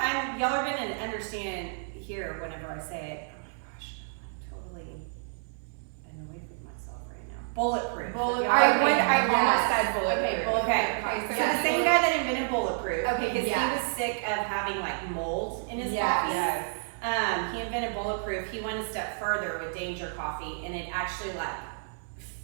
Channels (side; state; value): left; silent; 58 dB below the other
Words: y'all are gonna understand here whenever I say it. Oh my gosh, I'm totally annoyed with myself right now. Bulletproof. I almost yes. said bulletproof. Okay, bulletproof. Okay, Okay, so the same guy that invented Bulletproof, Okay, because yes. he was sick of having like mold in his Yes. coffee. Yes. He invented Bulletproof. He went a step further with Danger Coffee, and it actually like